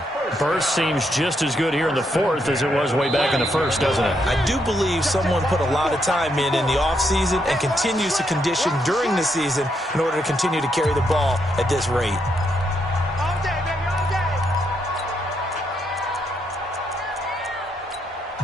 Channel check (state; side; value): normal; both; correlation 0.78